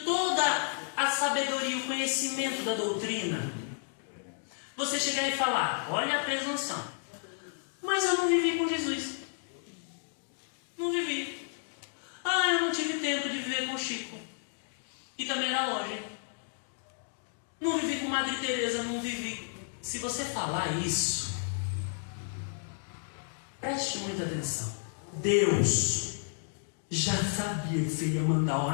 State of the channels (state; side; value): silent; right; digital silence